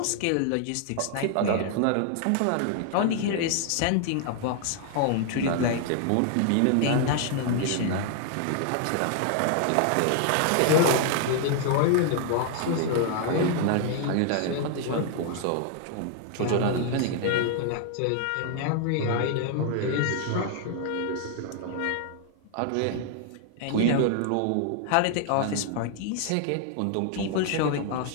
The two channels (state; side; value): different; both; correlation 0.00